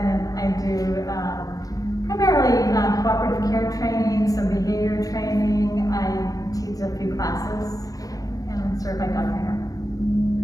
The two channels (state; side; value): late; right; 0.17 ms